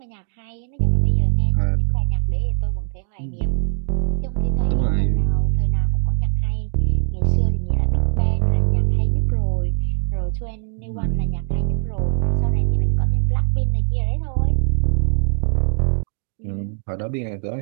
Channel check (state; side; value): silent; left; digital silence